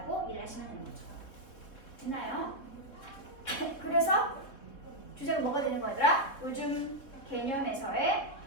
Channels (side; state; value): right; late; 3.7 ms